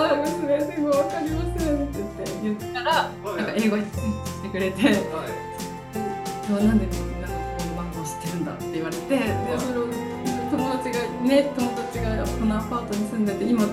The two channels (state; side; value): identical; both; correlation 1.00